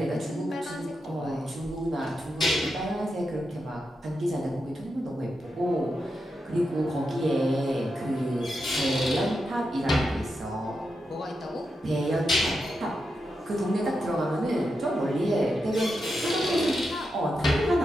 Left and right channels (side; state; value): both; normal; correlation 0.87